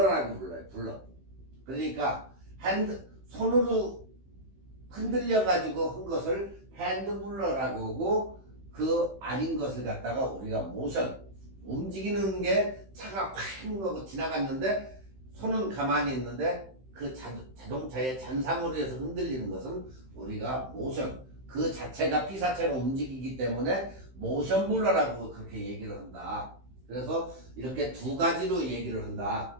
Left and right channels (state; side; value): late; left; 15 ms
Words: 불러요. 블러. 그러니까 손으로 흔들려 가지고 한 것을 핸드 블러라고 하고 그 아닌 것을 갖다가 우리가 모션 움직이는 게 차가 확 하고 지나갔는데 손은 가만히 있는데 그 자동차의 잔상으로 해서 흔들리는 것은 우리가 모션 그 자체가 피사체가 움직이기 때문에 모션 블러라고 그렇게 얘기를 한다. 그래서 이렇게 두 가지로 얘기를 한다.